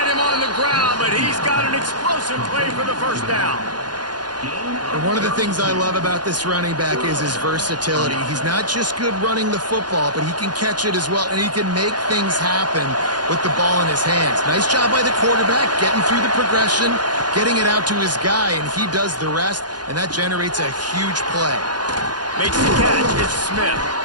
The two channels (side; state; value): left; late; 0.70 ms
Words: him on the ground, but he's got an explosive play for the first down. And one of the things I love about this running back is his versatility. He's not just good running the football, but he can catch it as well, and he can make things happen with the ball in his hands. Nice job by the quarterback, getting through the progression, getting it out to his guy, and he does the rest, and that generates a huge play. Makes the catch. It's Smith.